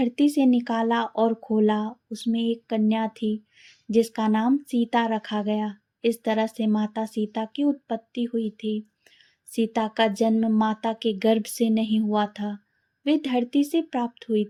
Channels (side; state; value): both; identical; correlation 1.00